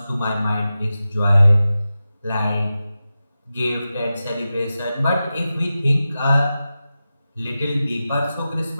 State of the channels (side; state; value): both; inverted; correlation -0.93